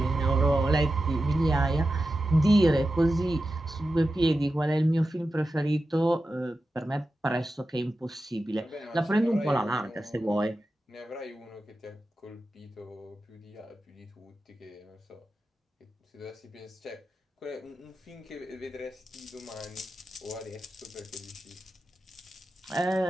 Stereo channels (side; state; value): both; normal; correlation 0.91